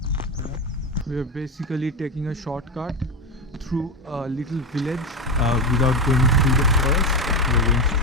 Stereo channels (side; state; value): both; normal; correlation 0.14